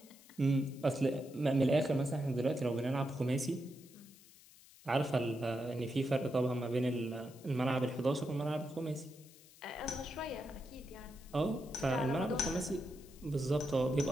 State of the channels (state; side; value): noise; left; hiss, 23 dB below the sound